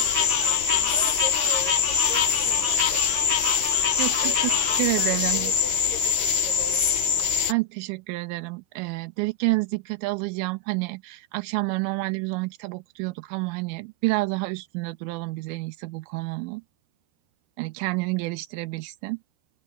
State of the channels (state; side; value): late; left; 13 ms